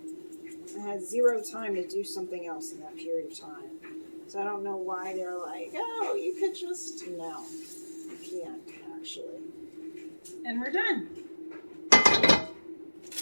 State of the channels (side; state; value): both; inverted; correlation -1.00